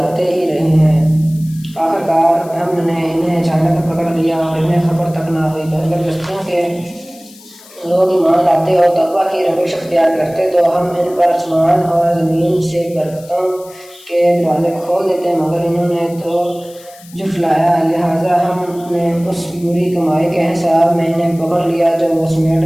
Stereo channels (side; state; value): left; noise; hiss, 23 dB below the sound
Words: آتے ہی رہے ہیں۔ آخر کار ہم نے انہیں اچانک پکڑ لیا اور انہیں خبر تک نہ ہوئی۔ اگر بستیوں کے لوگ ایمان لاتے اور تقویٰ کی روش اختیار کرتے تو ہم ان پر آسمان اور زمین سے برکتوں کے دروازے کھول دیتے، مگر انہوں نے تو جھٹلایا، لہٰذا ہم نے اس بری کمائی کے حساب میں انہیں پکڑ لیا جو وہ سمیٹ